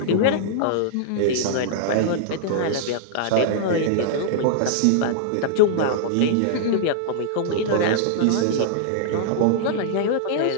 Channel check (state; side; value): different; both; correlation -0.01